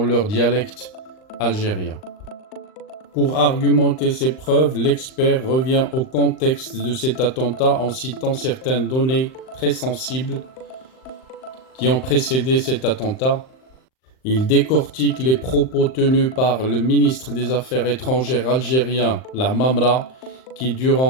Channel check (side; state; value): right; late; 39 ms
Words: leur dialecte algérien. Pour argumenter ces preuves, l'expert revient au contexte de cet attentat en citant certaines données très sensibles qui ont précédé cet attentat. Il décortique les propos tenus par le ministre des Affaires étrangères algérien, La Mamra, qui